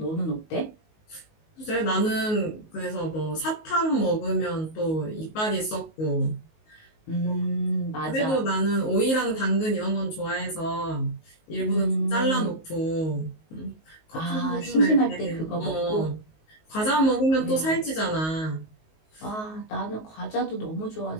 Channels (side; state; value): right; late; 19 ms